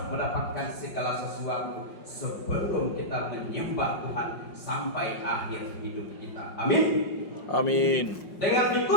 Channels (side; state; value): right; late; 5.3 ms